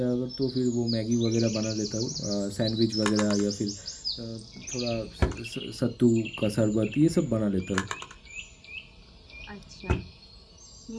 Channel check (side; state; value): both; identical; correlation 1.00